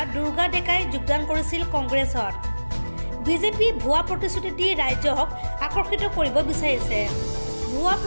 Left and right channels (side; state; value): both; inverted; correlation -1.00